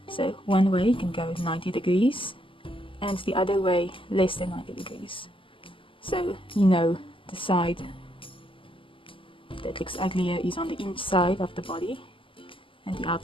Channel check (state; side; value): late; right; 0.25 ms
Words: So one way can go 90 degrees and the other way less than 90 degrees. So you know the side that looks uglier is on the inside of the body and the